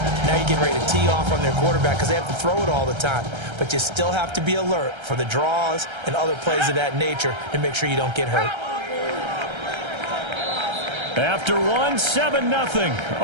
Now you're getting ready to tee off on their quarterback because they have to throw it all the time. But you still have to be alert for the draws and other plays of that nature to make sure you don't get hurt. After 1, 7-0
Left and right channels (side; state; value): left; late; 1.3 ms